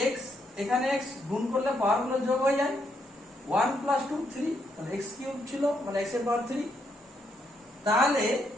এক্স গুণ করলে পাওয়ার গুলো যোগ হয়ে যায়। 1 + 2 3, তাহলে এক্স কিউব ছিল, মানে এক্স এর পাওয়ার 3। তাহলে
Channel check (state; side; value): normal; both; correlation 0.76